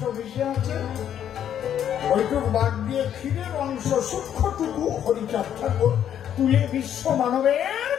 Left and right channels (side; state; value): right; quieter; 9.9 dB